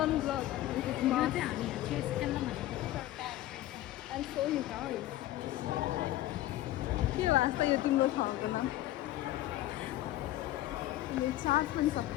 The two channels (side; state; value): right; quieter; 15.0 dB